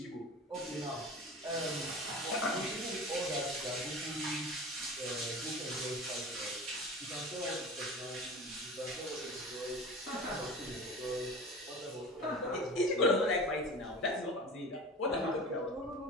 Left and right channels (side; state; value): both; normal; correlation 0.34